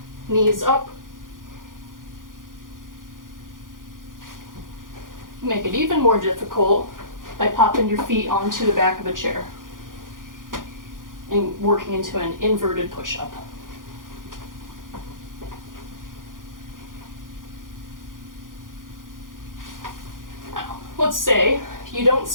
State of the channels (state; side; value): late; left; 0.90 ms